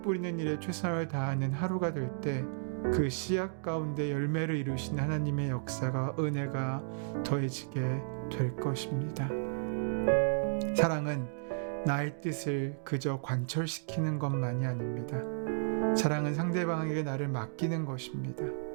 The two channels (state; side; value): silent; left; digital silence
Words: 뿌리는 일에 최선을 다하는 하루가 될 때 그 씨앗 가운데 열매를 이루신 하나님의 역사가, 은혜가 더해지게 될 것입니다. 사랑은 나의 뜻을 그저 관철시키는 것만이 아닙니다. 사랑은 상대방에게 나를 맡기는 것입니다.